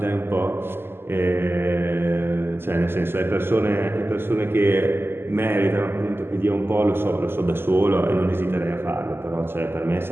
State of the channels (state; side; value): late; left; 0.11 ms